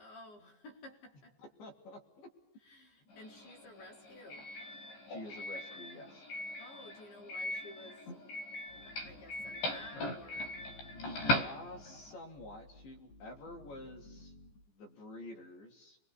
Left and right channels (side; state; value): right; late; 14 ms